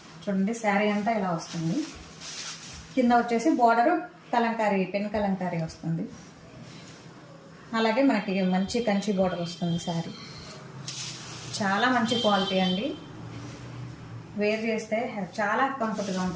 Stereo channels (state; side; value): identical; both; correlation 1.00